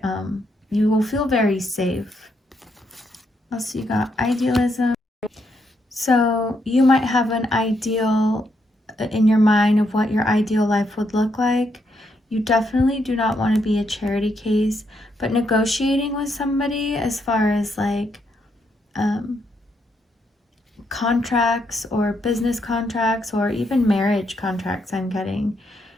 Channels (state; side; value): normal; both; correlation 0.78